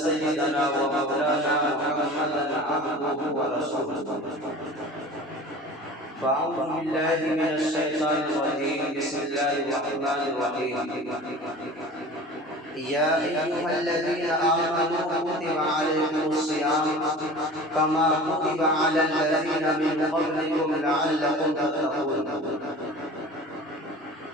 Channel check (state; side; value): normal; both; correlation 0.39